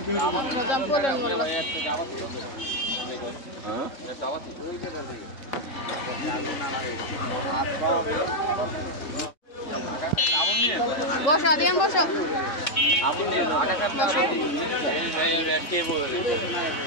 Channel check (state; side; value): late; right; 3.7 ms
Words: বসো আদিয়ান, বসো। আবুল নিন আগা কাটলা কে বলে